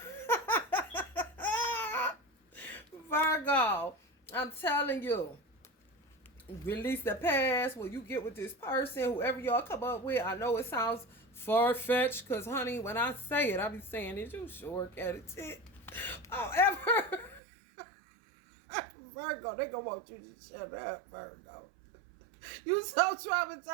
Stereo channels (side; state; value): left; drops out; at 17.4 s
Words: Virgo, I'm telling you. Release the past when you get with this person, whoever y'all come up with. I know it sounds far-fetched because, honey, when I say it, I be saying it. You sure cat it. However, Virgo, they gonna want you to shut up, Virgo. You so